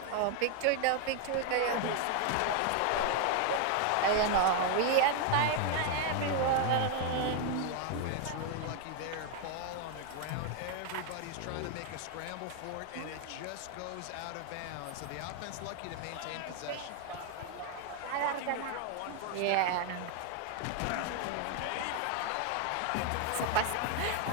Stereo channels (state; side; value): different; both; correlation 0.01